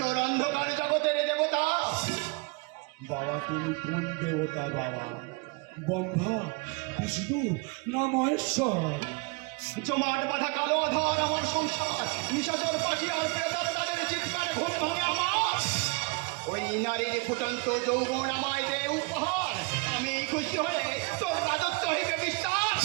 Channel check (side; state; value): left; quieter; 28.2 dB